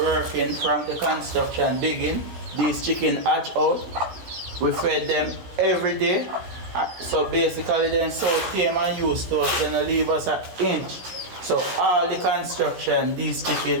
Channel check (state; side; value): late; left; 16 ms